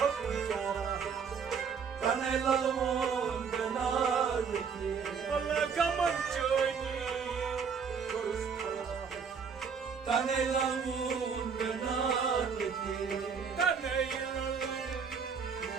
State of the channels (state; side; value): quieter; left; 6.2 dB